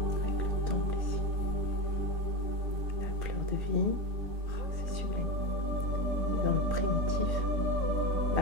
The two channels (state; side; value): late; left; 3.7 ms